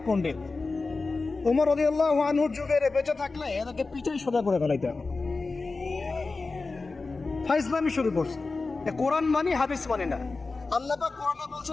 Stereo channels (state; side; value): quieter; right; 3.8 dB